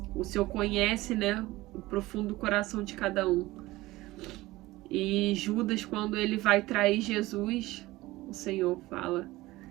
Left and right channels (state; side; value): quieter; left; 18.8 dB